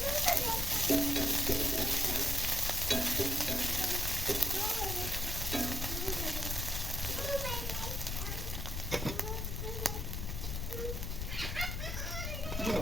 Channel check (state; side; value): noise; left; rumble, 3 dB below the sound